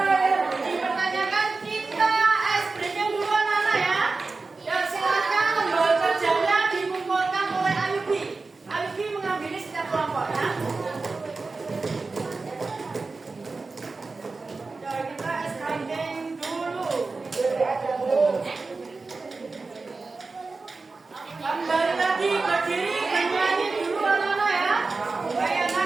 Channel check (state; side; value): quieter; left; 3.9 dB